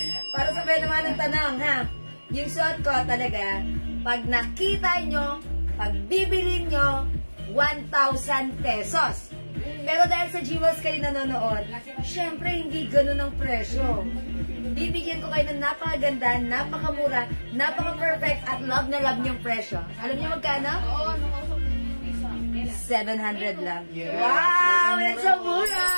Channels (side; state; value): both; inverted; correlation -1.00